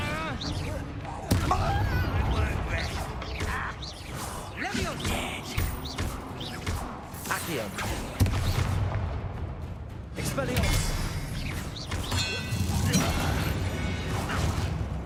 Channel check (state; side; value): identical; both; correlation 1.00